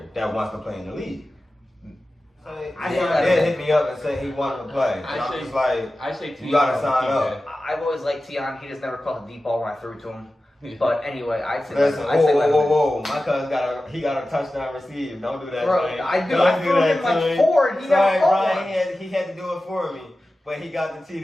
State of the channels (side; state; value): both; normal; correlation 0.95